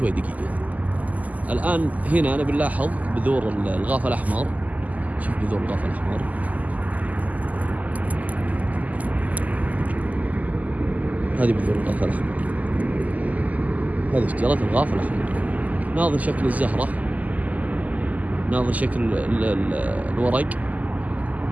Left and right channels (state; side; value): late; left; 0.077 ms